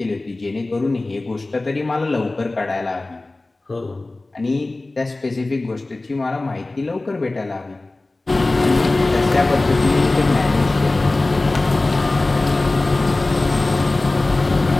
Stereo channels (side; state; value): right; quieter; 3.0 dB